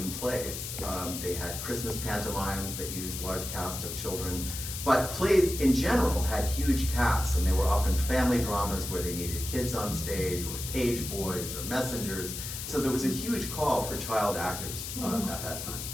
plays. They had Christmas pantomimes that used large casts of children, but plays in general had huge casts, and they were often family dramas where they needed kids on stage, or page boys, or messengers. So there was a huge call for child actors at that time.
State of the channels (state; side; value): noise; left; hiss, 7 dB below the sound